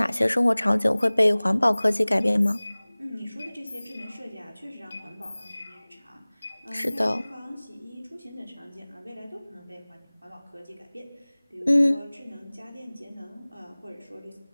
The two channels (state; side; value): inverted; both; correlation -1.00